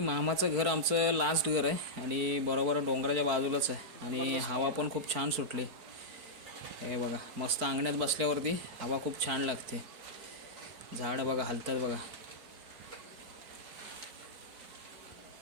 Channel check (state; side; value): late; left; 4.5 ms